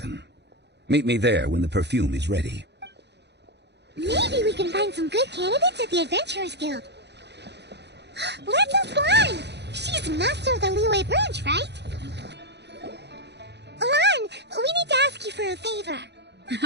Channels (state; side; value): late; left; 0.50 ms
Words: Meet me there when the perfume is ready. Maybe we can find some good candidates at the Adventurers Guild. Let's ask Lan! She's master of the Liyue branch, right? Lan, we need to ask you for a favor.